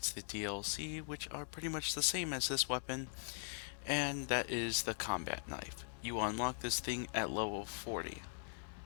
the DLC, which are pretty much the same as this weapon, and that is the combat knife. You unlock this thing at level 40.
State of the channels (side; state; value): right; silent; digital silence